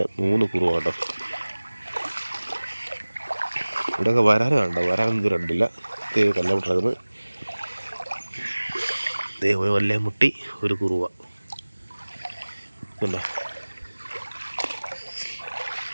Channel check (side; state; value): both; inverted; correlation -1.00